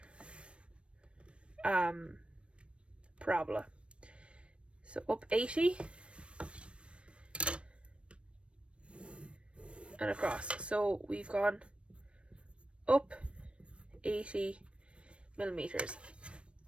parabola. So up 80 and across. So we've gone up 80 millimeters.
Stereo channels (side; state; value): left; late; 0.060 ms